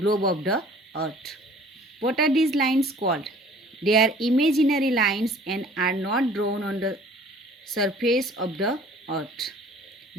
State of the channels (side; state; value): both; normal; correlation 0.51